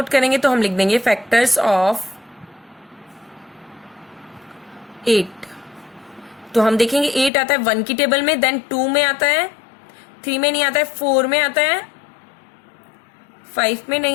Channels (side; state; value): right; drops out; at 7.3 s